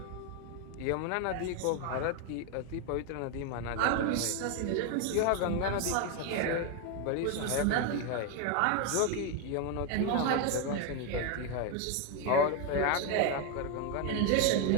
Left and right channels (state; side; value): different; both; correlation 0.01